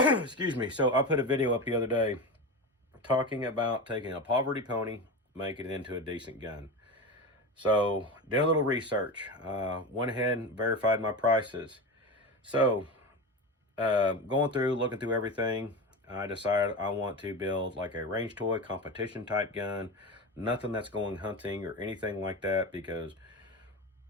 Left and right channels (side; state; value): both; normal; correlation 0.24